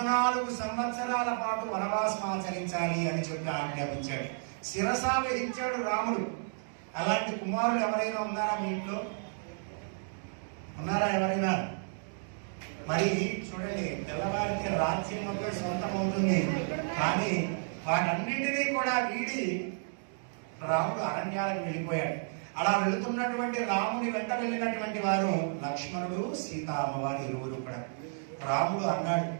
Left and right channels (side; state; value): left; silent; digital silence